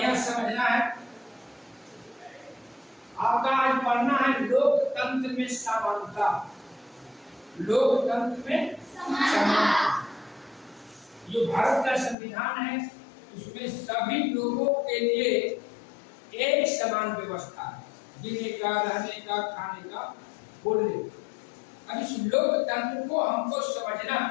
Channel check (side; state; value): right; drops out; at 12.2 s